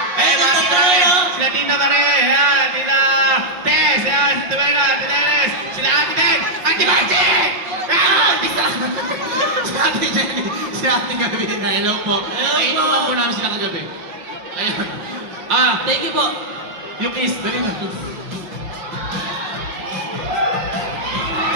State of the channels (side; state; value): left; late; 5.6 ms